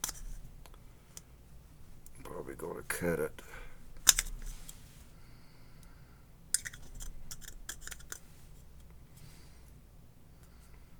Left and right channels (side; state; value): both; identical; correlation 1.00